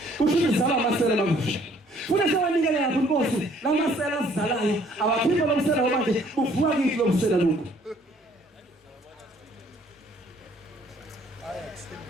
kusho izala amasela makusha funa sewanikele lapho inkosi lamasela azizalayo abaphimbo lomsela manje buvuka kithi lomsela lokho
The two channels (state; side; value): normal; both; correlation 0.60